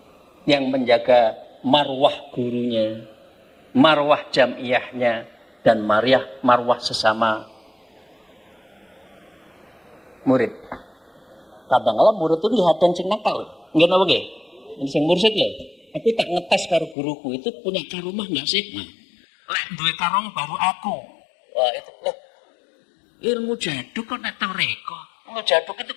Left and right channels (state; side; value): drops out; right; at 16.9 s